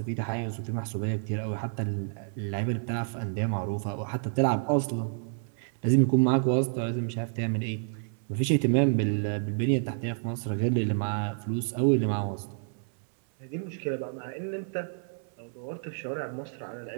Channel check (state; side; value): silent; left; 58 dB below the other